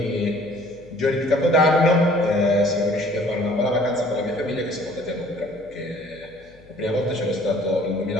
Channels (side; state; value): left; noise; hum, 26 dB below the sound